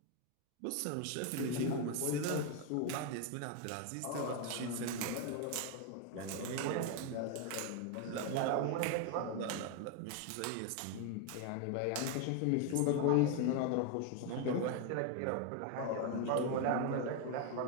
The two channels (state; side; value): different; both; correlation 0.01